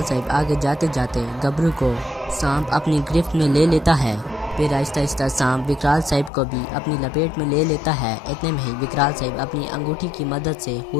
साहब आगे जाते जाते गबरू को सांप अपनी गिरफ्त में ले लेता है। फिर आहिस्ता आहिस्ता सांप विकराल साहब को भी अपनी लपेट में ले लेता है। इतने में ही विकराल साहब अपनी अंगूठी की मदद से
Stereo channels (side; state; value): right; drops out; at 6.3 s